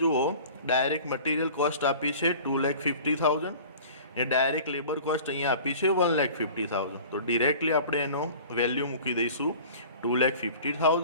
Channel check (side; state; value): both; inverted; correlation -0.43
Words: જુઓ, ડાયરેક્ટ મટીરિયલ કોસ્ટ આપી છે 2,50,000 ને ડાયરેક્ટ લેબર કોસ્ટ અહીંયા આપી છે 1,50,000. તો ડિરેક્ટલી આપણે એનો વેલ્યુ મૂકી દઈશું